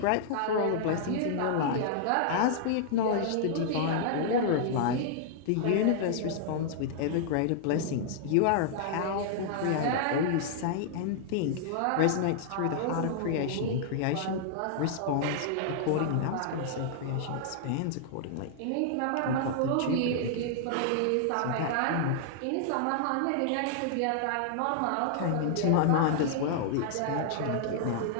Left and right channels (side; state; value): both; different; correlation -0.01